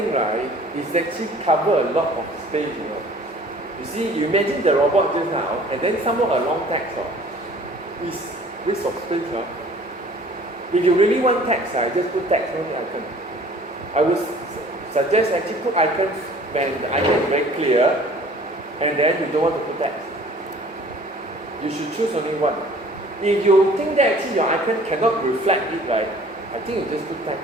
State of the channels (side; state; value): both; normal; correlation 0.51